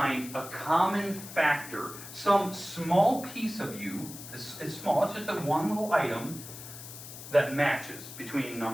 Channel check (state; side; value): noise; left; hiss, 13 dB below the sound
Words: a common factor, some small piece of you, it's small, it's just a one little item, that matches between